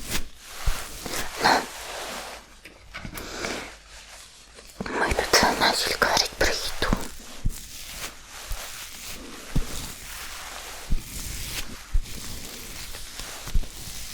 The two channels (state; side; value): identical; both; correlation 1.00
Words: Ну, мы тут начали говорить про еду.